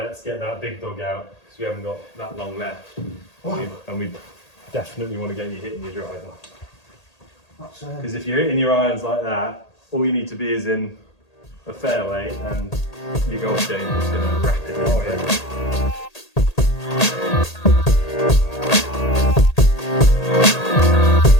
get that big dog out because we haven't got that long left. And we definitely want to get you hitting your driver. Because if you're hitting your irons like that, all you need to be is in a fairway and your golf game is going to rapidly improve.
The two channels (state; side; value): late; right; 1.8 ms